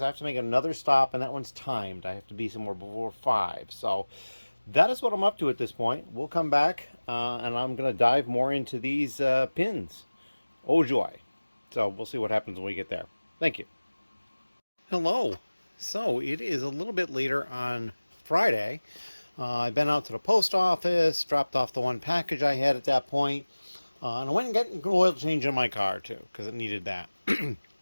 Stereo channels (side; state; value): both; inverted; correlation -1.00